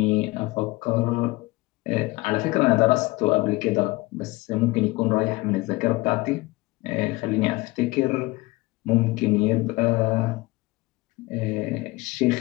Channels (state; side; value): quieter; right; 22.0 dB